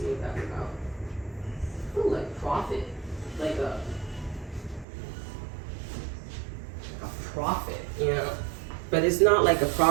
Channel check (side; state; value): left; drops out; at 4.9 s